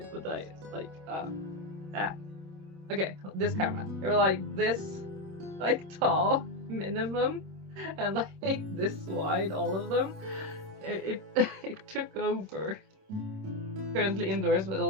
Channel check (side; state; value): left; late; 26 ms